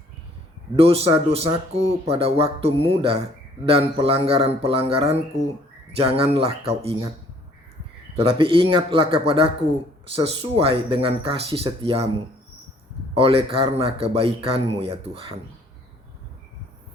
Dosa-dosaku pada waktu muda dan pelanggaran-pelanggaranku janganlah kau ingat. Tetapi ingatlah kepadaku sesuai dengan kasih setiamu, oleh karena kebaikanmu ya Tuhan.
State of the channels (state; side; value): normal; both; correlation 0.59